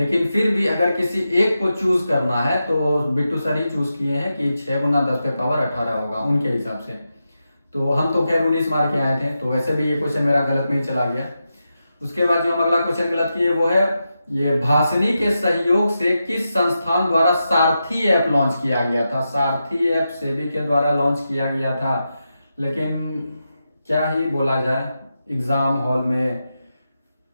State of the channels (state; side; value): inverted; both; correlation -0.89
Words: फिर भी अगर किसी एक को चूज करना है तो बिट्टू सर ही चूज किए हैं कि 6 गुना 10 पे पावर 18 होगा उनके हिसाब से। तो हम तो खैर 19 मार के आए थे, तो वैसे भी ये क्वेश्चन मेरा गलत में ही चला गया। उसके बाद जो हम अगला क्वेश्चन गलत किए वो है, ये भाषिनी के सहयोग से किस संस्थान द्वारा सारथी ऐप लॉन्च किया गया था। सारथी ऐप सेबी के द्वारा लॉन्च किया गया था, लेकिन क्या ही बोला जाए, एग्जाम हॉल में